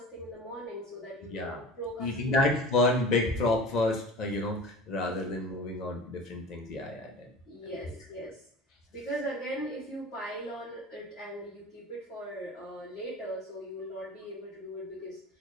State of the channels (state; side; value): normal; both; correlation 0.36